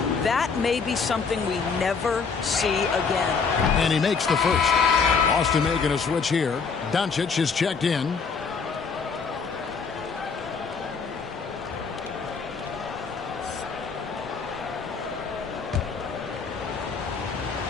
that may be something we never see again. And he makes the first. Austin making a switch here. Doncic is checked in.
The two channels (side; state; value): right; quieter; 5.3 dB